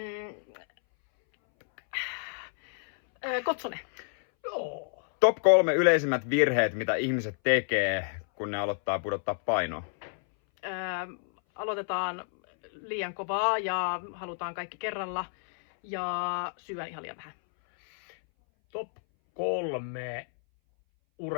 kotsone. Joo. Top 3 yleisimmät virheet, mitä ihmiset tekee, kun ne aloittaa pudottaa painoa. Aloitetaan liian kovaa ja halutaan kaikki kerralla ja syön ihan liian vähän. Top 3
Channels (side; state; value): right; silent; 58 dB below the other